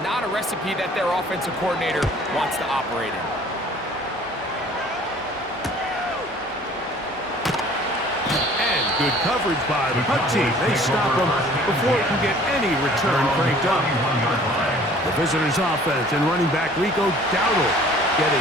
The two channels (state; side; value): normal; both; correlation 0.52